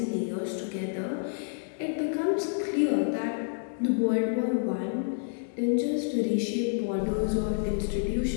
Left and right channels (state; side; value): silent; right; digital silence